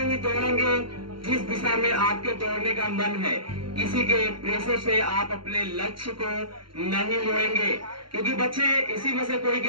ही दौड़ेंगे जिस दिशा में आपके दौड़ने का मन है। किसी के प्रेशर से आप अपने लक्ष्य को नहीं मोड़ेंगे, क्योंकि बच्चे इसी में से कोई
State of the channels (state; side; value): late; left; 0.73 ms